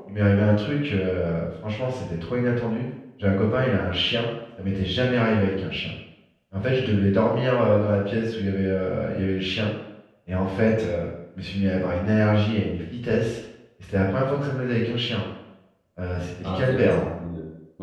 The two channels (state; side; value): identical; both; correlation 1.00